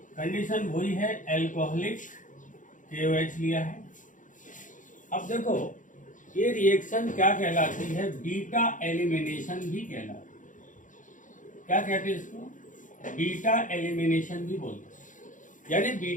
कंडीशन वही है, एल्कोहलिक KOH लिया है। अब देखो ये रिएक्शन क्या कहलाती है? बीटा एलिमिनेशन भी कहलाती है। क्या कहते हैं इसको? बीटा एलिमिनेशन भी बोलते हैं। यानी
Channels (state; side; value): late; right; 0.37 ms